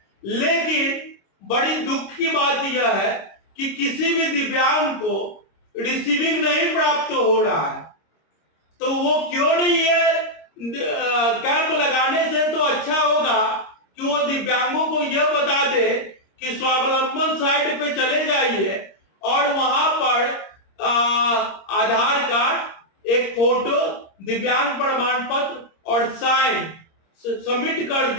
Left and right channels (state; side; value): late; right; 26 ms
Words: लेकिन बड़ी दुख की बात यह है कि किसी भी दिव्यांग को रिसीविंग नहीं प्राप्त हो रहा है। तो वो क्यों नहीं, ये कैंप लगाने से तो अच्छा होगा कि वो दिव्यांगों को यह बता दे कि स्वावलंबन साइट पे चले जाइए और वहां पर आधार कार्ड, एक फोटो, दिव्यांग प्रमाण पत्र और साइन सबमिट कर